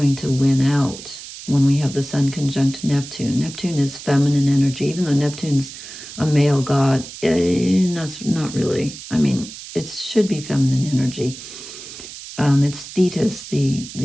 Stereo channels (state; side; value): noise; right; hiss, 13 dB below the sound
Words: to win out. when we have the Sun conjunct Neptune. Neptune is feminine energy, even though Neptune's a male god. That's not really. I mean, it should be feminine energy. It's Thetis,